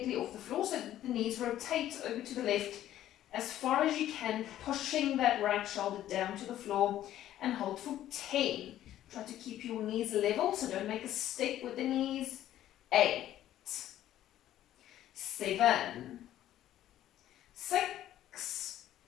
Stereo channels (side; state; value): right; quieter; 12.6 dB